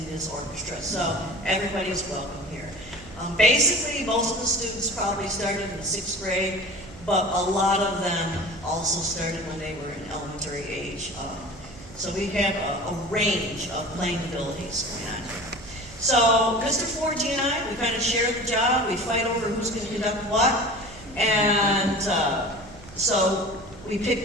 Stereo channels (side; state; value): right; noise; hum, 19 dB below the sound